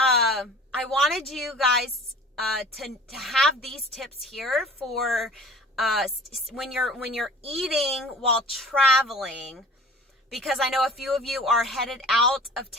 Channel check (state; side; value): normal; both; correlation 0.45